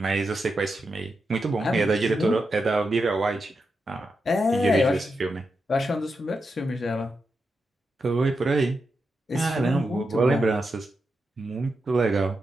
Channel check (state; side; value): normal; both; correlation 0.87